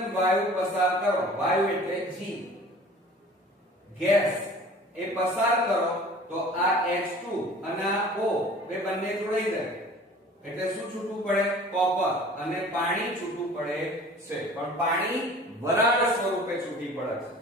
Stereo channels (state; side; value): normal; both; correlation 0.46